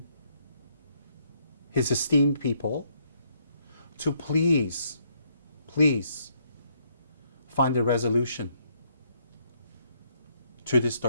his esteemed people to please, please find a resolution to this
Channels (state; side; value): inverted; both; correlation -0.71